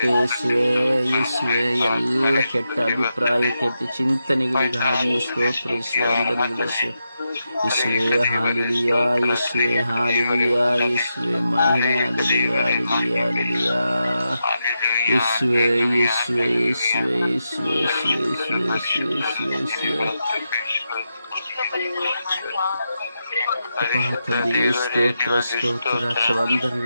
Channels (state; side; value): inverted; both; correlation -0.87